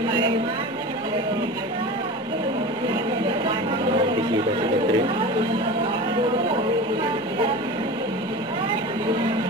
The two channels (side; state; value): both; normal; correlation 0.31